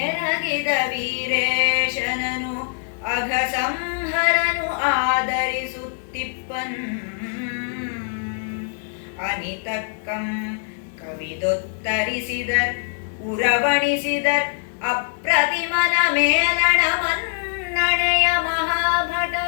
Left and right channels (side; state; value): right; silent; 64 dB below the other